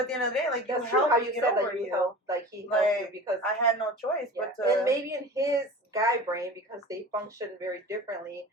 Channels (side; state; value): both; normal; correlation 0.36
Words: the end of the day, like, that's true how you said that you helped, like, he helped you, because I had no choice but to... And maybe in his guy brain, because they function very differently,